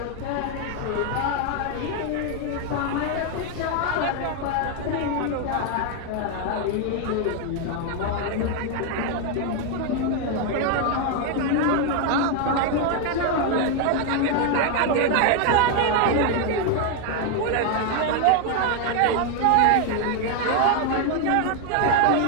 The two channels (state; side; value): different; both; correlation 0.01